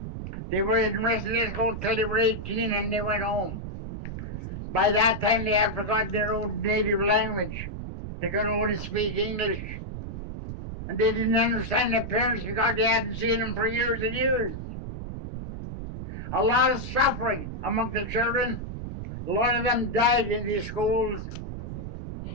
They were in residential school till they were 18 and they went home. By that time, they had forgotten their own native language. They could only speak English. And they didn't understand their parents because they hadn't seen them for years and years. A lot of suffering among the children. A lot of them died in these schools.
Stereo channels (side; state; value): right; noise; rumble, 7 dB below the sound